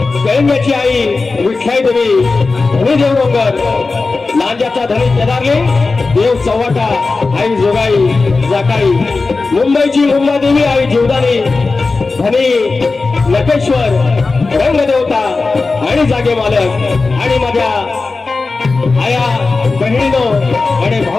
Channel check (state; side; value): quieter; right; 3.9 dB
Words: गळंब्याची आई विठ्ठाई देवी धनी देवडोंगर लांजाचा धनी केदारले देव चव्हाटा आई जोगाई जाकाई मुंबईची मुंबादेवी आई जीवदानी धनी नकेश्वर रंगदेवता आणि जागे मालक आणि माझ्या आया बहिणीनो आणि